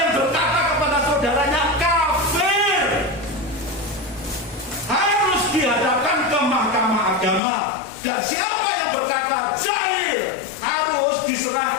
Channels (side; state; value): right; drops out; at 7.4 s